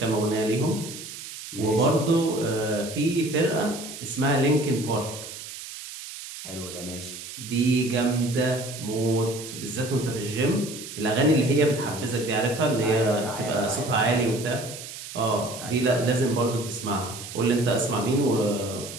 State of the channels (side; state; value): right; noise; hiss, 11 dB below the sound